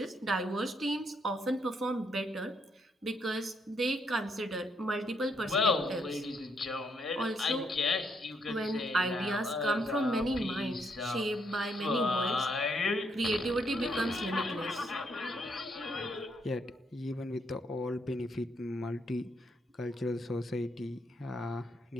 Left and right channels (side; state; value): both; normal; correlation 0.74